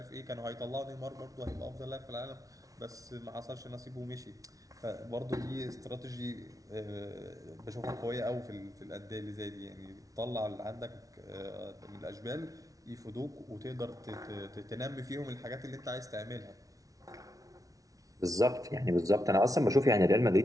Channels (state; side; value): late; left; 0.17 ms